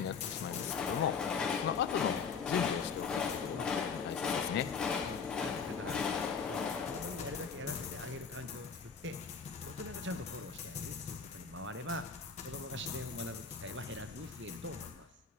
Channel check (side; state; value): right; quieter; 5.8 dB